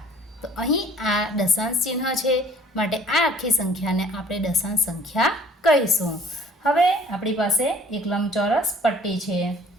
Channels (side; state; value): both; normal; correlation 0.53